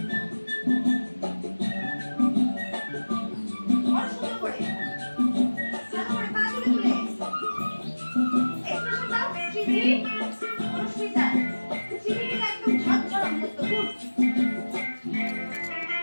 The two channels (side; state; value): both; inverted; correlation -1.00